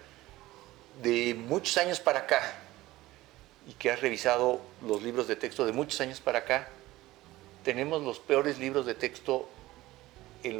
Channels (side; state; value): left; quieter; 17.5 dB